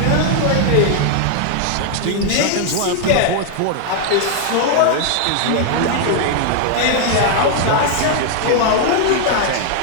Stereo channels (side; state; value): both; different; correlation 0.00